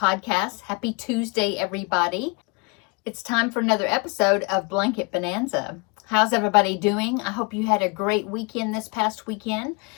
Happy Tuesday everybody. It's time for another episode of Blanket Bonanza. How's everybody doing? I hope you had a great weekend this past weekend.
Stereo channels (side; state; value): right; quieter; 30.0 dB